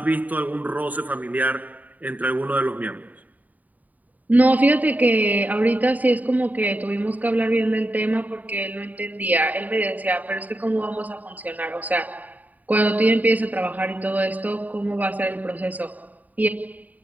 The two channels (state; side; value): late; left; 0.077 ms